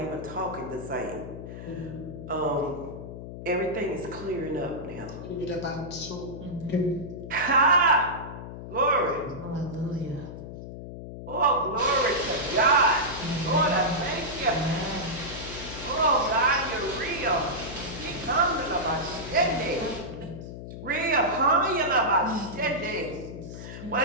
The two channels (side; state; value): left; noise; hum, 10 dB below the sound